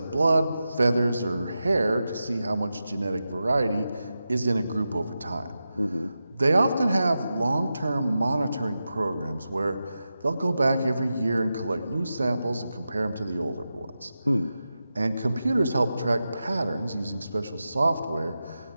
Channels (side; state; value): both; inverted; correlation -0.91